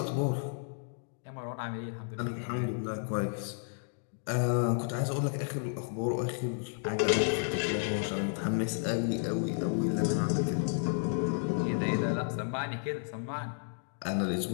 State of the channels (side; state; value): right; silent; digital silence